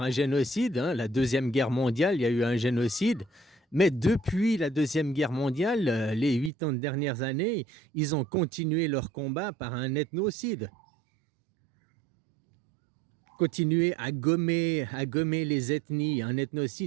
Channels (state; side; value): drops out; left; at 6.5 s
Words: un génocide, hein. La Deuxième Guerre mondiale, il y a eu un génocide. Mais depuis la Deuxième Guerre mondiale, les 80 dernières années, ils ont continué leur combat par un ethnocide. Continuer à gommer les ethnies. Un